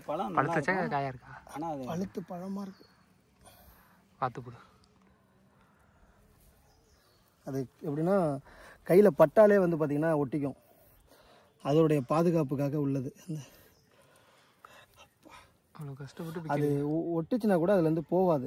பழம் பழுத்தச்சா காயா இருக்கா? ஆனால் அது பழுத்து பழமாக இருக்கு. பார்த்து போடு. அது எப்படின்னா கையில் பட்டாலே வந்து பார்த்திங்கன்னா ஒட்டிக்கும். அதோடைய பாதுகாப்புக்காக உள்ளது. அந்த அவ்வளோ கஷ்டப்பட்டு அது ஒட்டுச்சுன்னா கூட அதுலேருந்து போகாது.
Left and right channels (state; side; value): identical; both; correlation 1.00